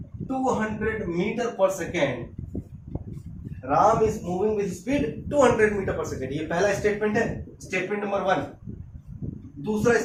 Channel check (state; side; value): identical; both; correlation 1.00